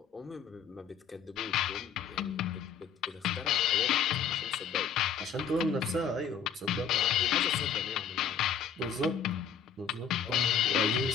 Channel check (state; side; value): quieter; right; 7.1 dB